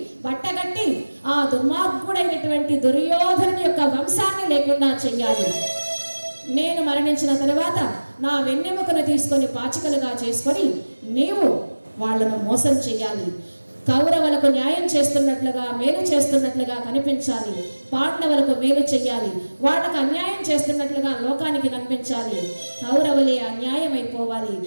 బట్టగట్టి ఆ దుర్మార్గుడైనటువంటి దుర్యోధనుని యొక్క వంశాన్ని లేకుండా చెయ్యాలి. నేను మరణించిన తరువాత నా వెన్నెముకను తీసుకొని పాచికలుగా చేసుకొని నీవు వాళ్లను మోసం చెయ్యాలి. కౌరవులకు న్యాయం చేస్తున్నట్లుగా, మేలు చేస్తున్నట్లుగా కనిపించాలి, పాండవులకు మేలు చెయ్యాలి, వాళ్ళకు అన్యాయం చేస్తున్నట్లుగా లోకానికి కనిపించాలి. కౌరవులే అన్యాయం అయిపోవాలి.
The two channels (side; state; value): both; inverted; correlation -1.00